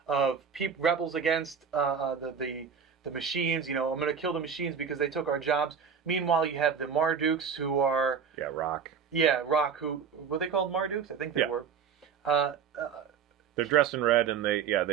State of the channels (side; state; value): left; quieter; 6.7 dB